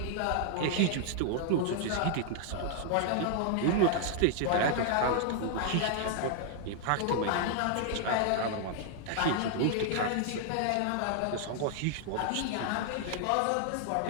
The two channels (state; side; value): different; both; correlation 0.00